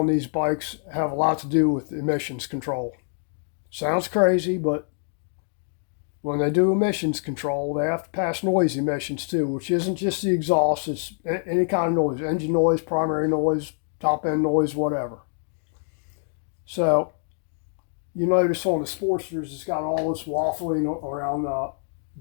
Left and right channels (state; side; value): silent; right; 60 dB below the other